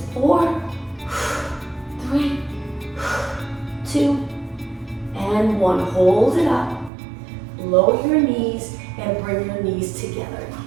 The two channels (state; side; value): drops out; left; at 6.9 s